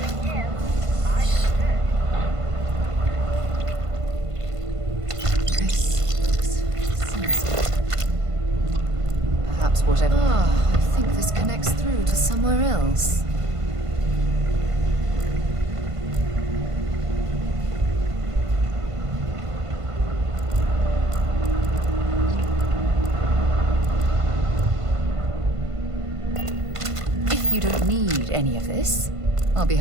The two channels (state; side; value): late; left; 1.5 ms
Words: in, I should. Perhaps whatever. Ah, I think this connects through to somewhere else. If you don't need any of this, I'll be